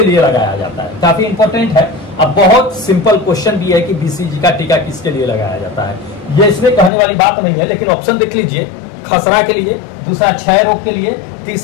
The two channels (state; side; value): drops out; right; at 6.9 s